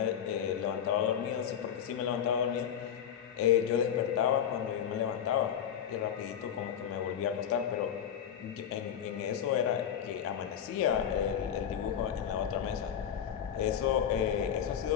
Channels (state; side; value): quieter; right; 9.1 dB